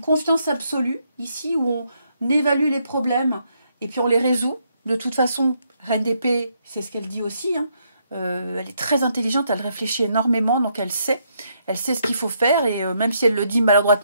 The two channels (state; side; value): inverted; both; correlation -0.75